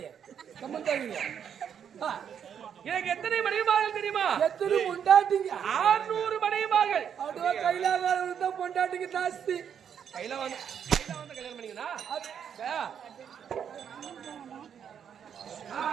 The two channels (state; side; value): quieter; left; 8.2 dB